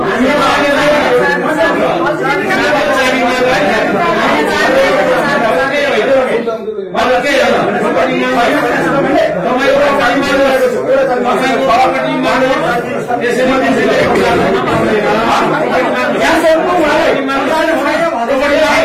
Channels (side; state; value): both; identical; correlation 1.00